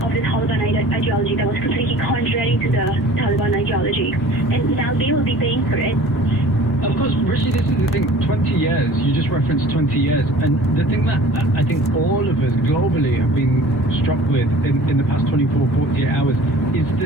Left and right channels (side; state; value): both; normal; correlation 0.46